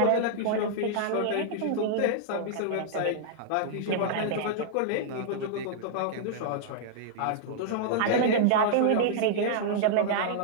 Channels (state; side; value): different; both; correlation -0.01